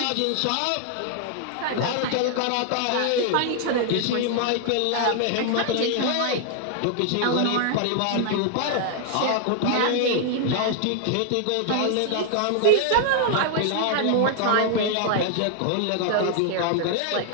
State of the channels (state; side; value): different; both; correlation 0.00